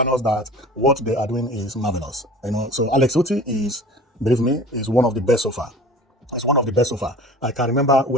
that what they are doing is marvelous. So Alex Otti is, believe me, is one of the best so far. It's one of the best so far. I can remember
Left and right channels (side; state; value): both; normal; correlation 0.41